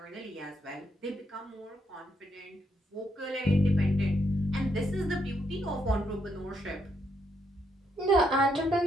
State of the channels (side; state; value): both; normal; correlation 0.76